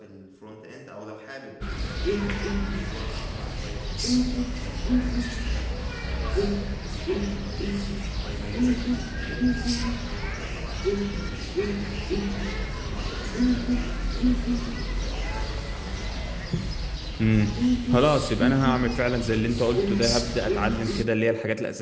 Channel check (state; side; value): identical; both; correlation 1.00